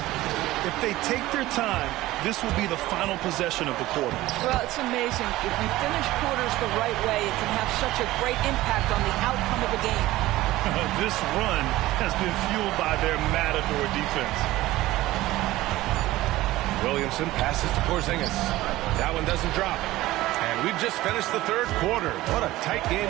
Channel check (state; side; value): quieter; left; 17.0 dB